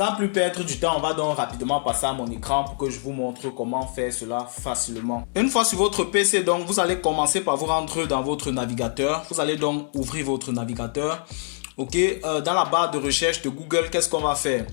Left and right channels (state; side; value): silent; right; 62 dB below the other